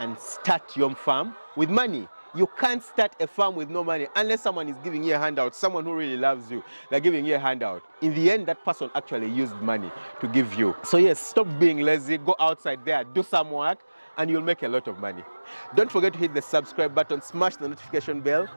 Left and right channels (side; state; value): both; inverted; correlation -1.00